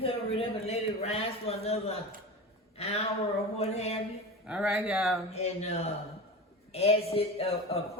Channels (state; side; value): normal; both; correlation 0.28